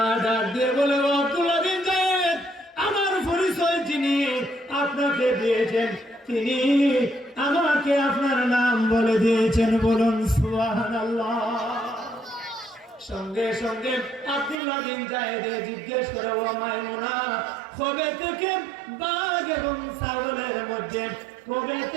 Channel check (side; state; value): left; drops out; at 14.6 s